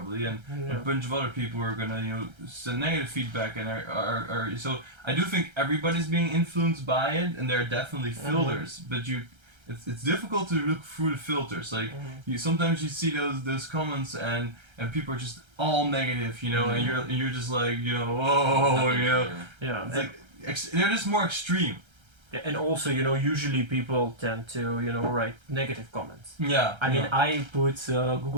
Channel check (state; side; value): late; left; 1.3 ms